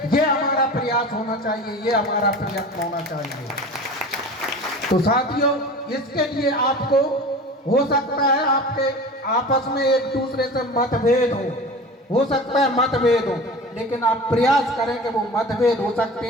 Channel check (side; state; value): both; normal; correlation 0.36